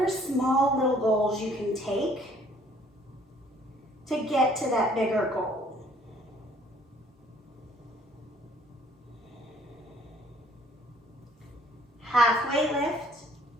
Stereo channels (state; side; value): normal; both; correlation 0.60